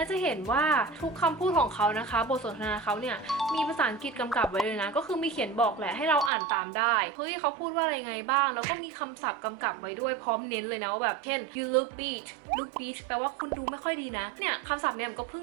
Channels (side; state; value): left; drops out; at 6.3 s